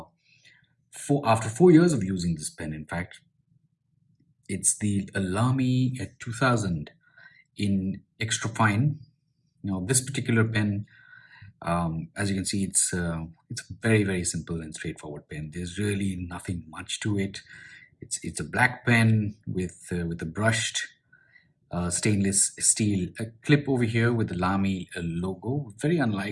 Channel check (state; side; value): identical; both; correlation 1.00